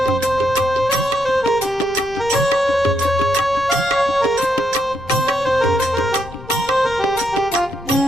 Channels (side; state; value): left; noise; rumble, 17 dB below the sound